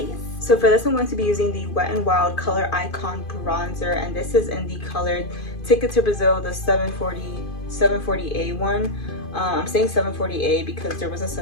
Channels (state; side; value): late; right; 2.5 ms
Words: So for this, I'm going to be using the Wet n Wild Color Icon Bronzer, and this is in the color Ticket to Brazil, the 740A one. I'm saying 740A because there was a